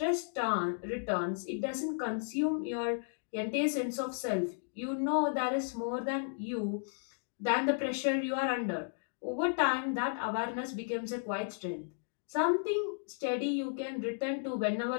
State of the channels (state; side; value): silent; right; digital silence